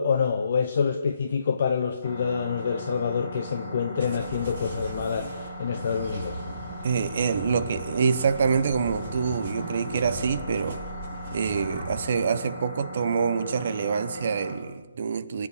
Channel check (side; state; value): both; inverted; correlation -0.72